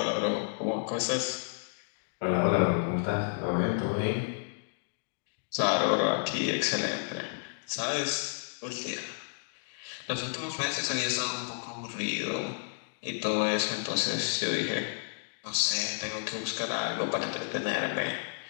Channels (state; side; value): silent; right; digital silence